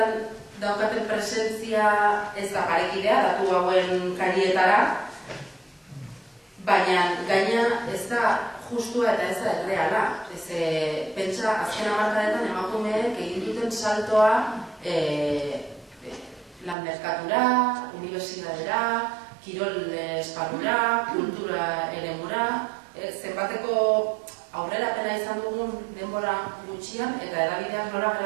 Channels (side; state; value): left; drops out; at 16.8 s